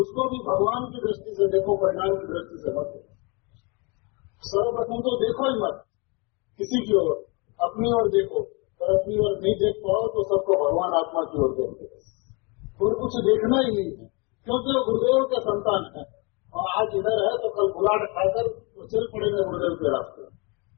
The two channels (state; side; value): quieter; right; 30.2 dB